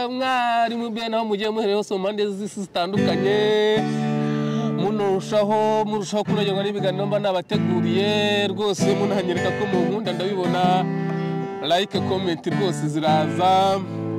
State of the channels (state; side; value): identical; both; correlation 1.00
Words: mwari mu bya naho mugiye muhereye hose mu mpande z'isi zitandukanye murushaho kunogerwa n'ibiganiro mba nabateguriye rwose munahanyereka ko mu nkunda ndabibona like comment rwose ziraza